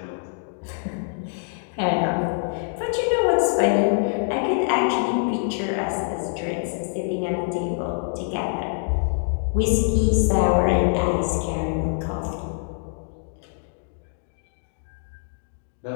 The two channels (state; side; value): silent; right; digital silence